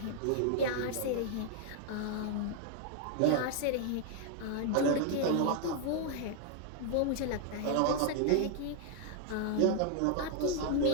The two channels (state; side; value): different; both; correlation 0.00